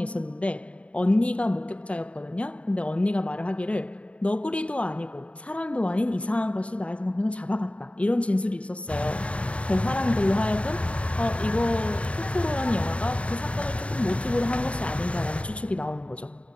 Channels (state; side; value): late; right; 0.063 ms